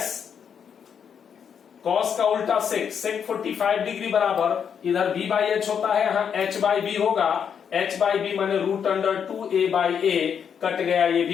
cos का उल्टा sec 45 डिग्री बराबर इधर B/H होता है, यहां H/B होगा। H/B माने √2a/a कट गया, ये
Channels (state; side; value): quieter; right; 7.6 dB